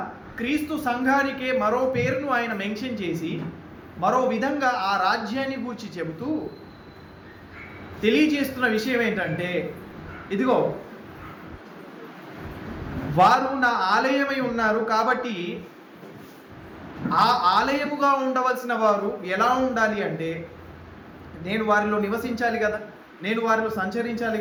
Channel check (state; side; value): identical; both; correlation 1.00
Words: క్రీస్తు సంఘానికే మరో పేరును ఆయన మెన్షన్ చేసి మరో విధంగా ఆ రాజ్యాన్ని గూర్చి చెబుతూ తెలియజేస్తున్న విషయం ఏంటంటే, ఇదిగో వారు నా ఆలయమై ఉన్నారు కాబట్టి ఆ ఆలయముగా ఉండవలసిన వారు ఎలా ఉండాలి అంటే, నేను వారిలో నివసించాలి కదా, నేను వారిలో సంచరించాలి